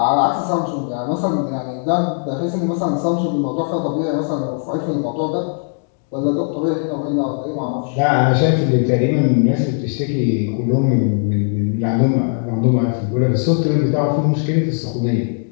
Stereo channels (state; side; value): silent; right; 57 dB below the other